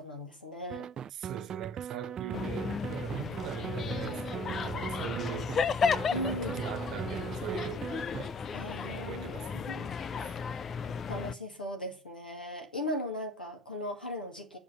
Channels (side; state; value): both; normal; correlation 0.52